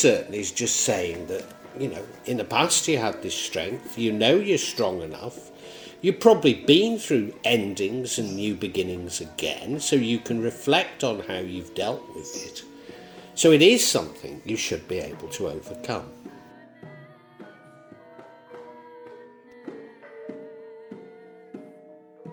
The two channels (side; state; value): both; identical; correlation 1.00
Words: is just saying that, you know, in the past you had this strength, you know you're strong enough, you've probably been through endings and new beginnings again, so you can reflect on how you've dealt with it. So it is something you should be able to overcome.